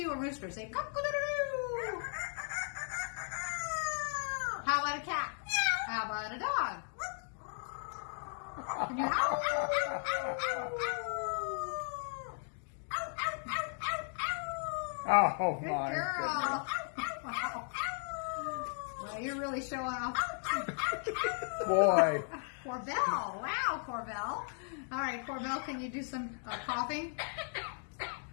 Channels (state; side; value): silent; right; 54 dB below the other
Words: a rooster. Say cock-a-doodle-doo. How about a cat? How about a dog? Can you howl? Oh, Good my girl. Well, you're really showing off. goodness. Boy. Corbell. Wow, Corbell. All right, Corbell, can you do some coughing?